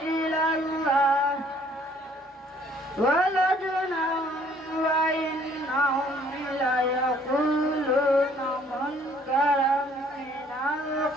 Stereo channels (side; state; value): both; normal; correlation 0.60